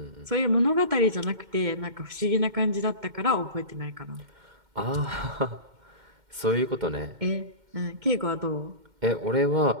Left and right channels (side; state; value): left; late; 2.1 ms